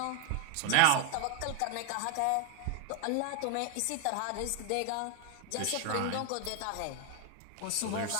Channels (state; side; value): different; both; correlation 0.00